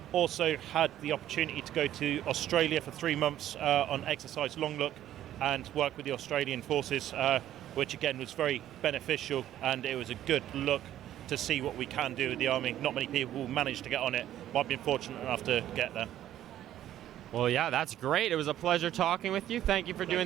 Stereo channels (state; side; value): quieter; left; 12.2 dB